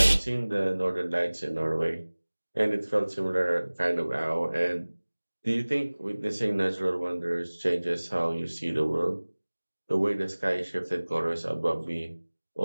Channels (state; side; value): inverted; both; correlation -1.00